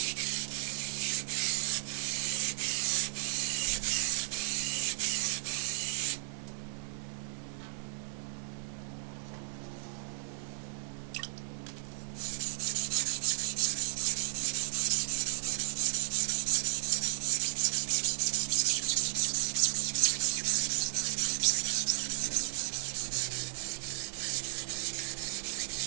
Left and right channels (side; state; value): left; silent; digital silence